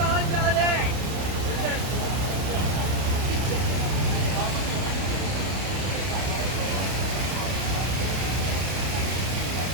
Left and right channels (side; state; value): left; late; 31 ms